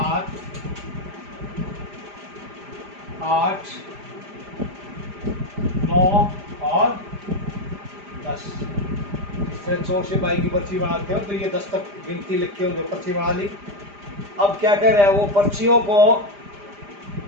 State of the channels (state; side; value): late; left; 5.0 ms